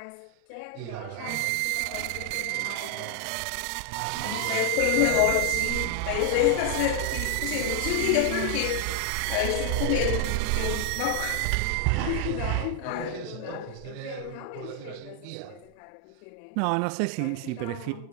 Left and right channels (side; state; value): both; different; correlation 0.01